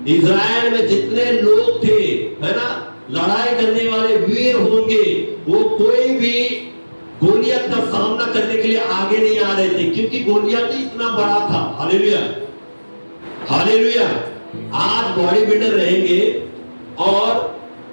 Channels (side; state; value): both; inverted; correlation -1.00